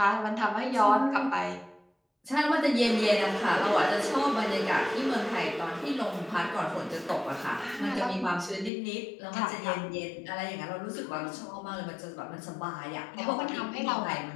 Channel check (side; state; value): right; drops out; at 8.7 s